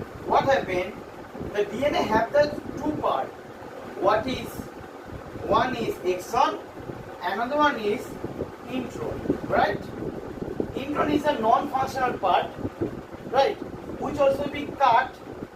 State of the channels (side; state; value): both; identical; correlation 1.00